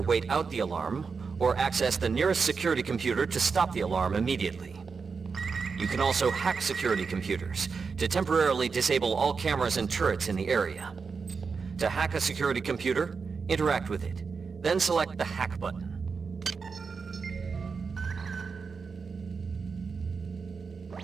out the alarm, or access the nearest security computer to stop the alarm immediately. You can also hack security computers to temporarily disable all cameras and turrets in the area. To hack a security computer, interact with it, then select the hack button.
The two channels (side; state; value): left; quieter; 5.2 dB